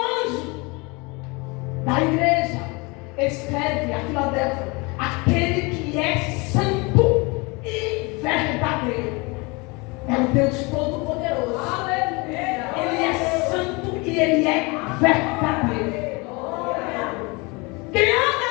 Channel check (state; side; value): quieter; right; 27.2 dB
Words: anjo da igreja: escreve a Filadélfia, aquele que é santo e verdadeiro. É o Deus Todo-Poderoso. Ele é santo e ele é verdadeiro. Quem anda